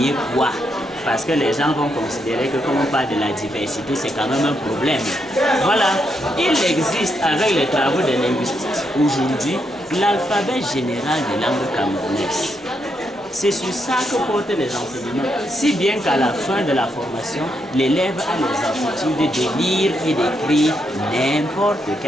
quoi? Parce que les gens vont considérer que comme on parle de la diversité, c'est quand même un problème. Voilà, il existe avec les travaux des linguistes aujourd'hui l'alphabet général des langues camerounaises. C'est sur ça que portent les enseignements, si bien qu'à la fin de la formation, l'élève a les aptitudes de lire et d'écrire n'importe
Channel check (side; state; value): both; normal; correlation 0.80